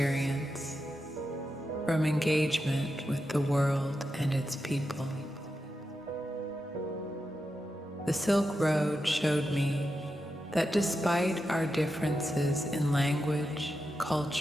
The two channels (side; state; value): both; normal; correlation 0.88